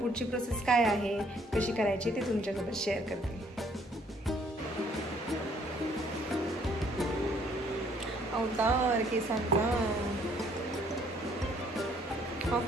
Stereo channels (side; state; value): both; normal; correlation 0.63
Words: प्रोसेस काय आहे, कशी करायची ते तुमच्यासोबत शेअर करते. अवतार केसांचा